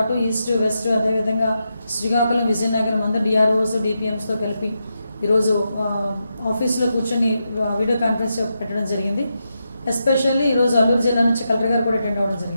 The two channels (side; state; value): both; inverted; correlation -0.86